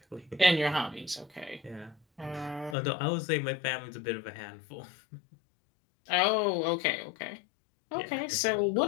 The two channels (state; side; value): drops out; right; at 2.8 s